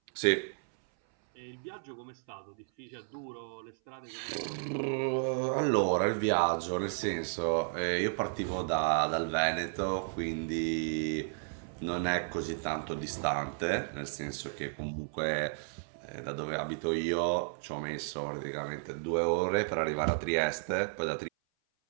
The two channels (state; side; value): silent; left; 56 dB below the other